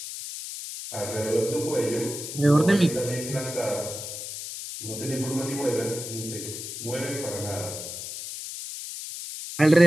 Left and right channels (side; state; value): left; noise; hiss, 8 dB below the sound